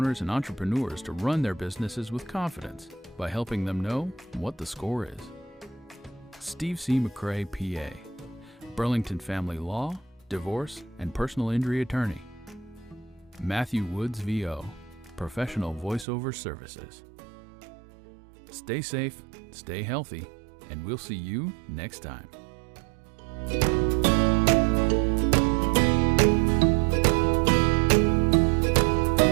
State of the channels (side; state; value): left; drops out; at 16.1 s